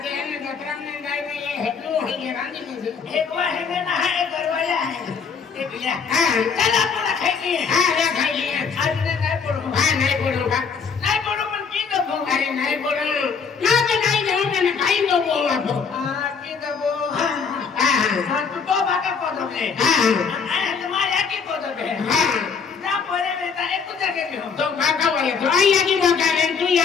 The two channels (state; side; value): quieter; right; 5.9 dB